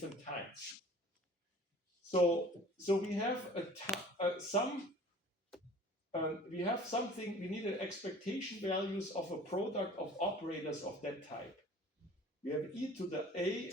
So we have we have something. We need an expectation values of a product of operators of that type. We have e to the a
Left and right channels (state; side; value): normal; both; correlation 0.47